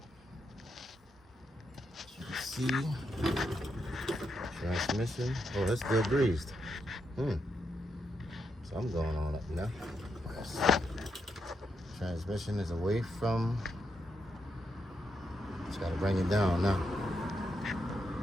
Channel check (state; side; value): normal; both; correlation 0.82